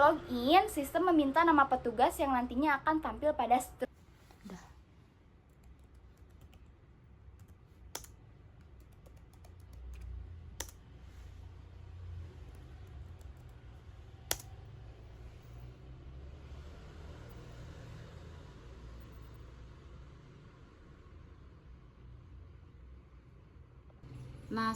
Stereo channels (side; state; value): both; identical; correlation 1.00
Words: sistem meminta nama petugas yang nantinya akan tampil pada Nah,